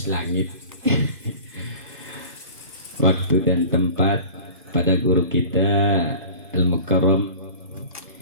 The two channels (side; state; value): both; inverted; correlation -0.40